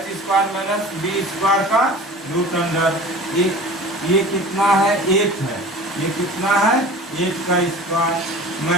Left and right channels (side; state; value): both; normal; correlation 0.40